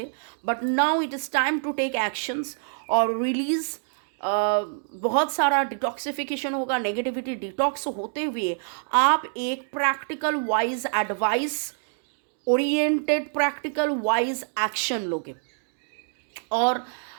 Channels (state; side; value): silent; left; digital silence